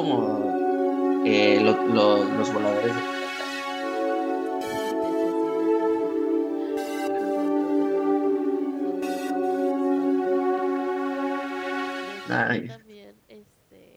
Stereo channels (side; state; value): both; identical; correlation 1.00